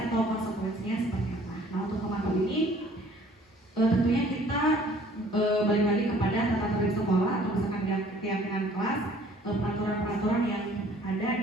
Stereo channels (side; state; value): both; normal; correlation 0.55